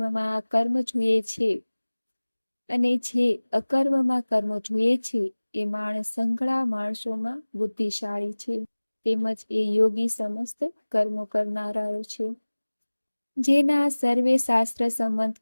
કર્મ જુએ છે અને જે અકર્મમાં કર્મ જુએ છે એ માણસ સંઘળા માણસોમાં બુદ્ધિશાળી છે, તેમજ એ યોગી સમસ્ત કર્મો કરનારાઓ છે. જેના સર્વે શાસ્ત્ર સંમત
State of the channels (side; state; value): both; inverted; correlation -1.00